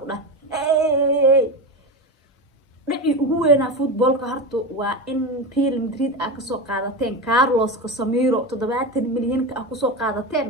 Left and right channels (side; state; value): both; normal; correlation 0.20